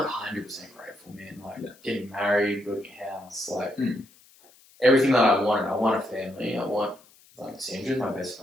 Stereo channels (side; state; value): left; noise; hiss, 27 dB below the sound